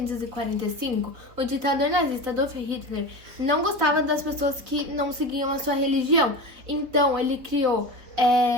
o ditador nazista Adolf Hitler não gostava das pessoas que não seguiam a sua religião. Então, ele criou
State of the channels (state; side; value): late; left; 3.8 ms